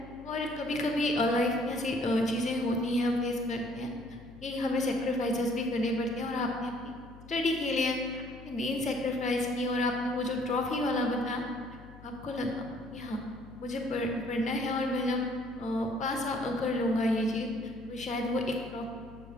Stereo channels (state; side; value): noise; left; hum, 18 dB below the sound